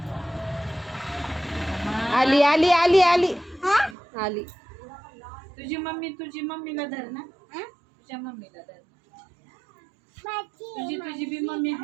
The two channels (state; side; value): drops out; left; at 4.0 s